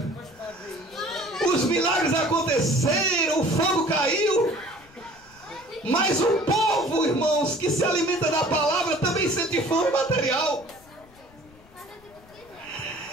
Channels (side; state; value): left; noise; rumble, 26 dB below the sound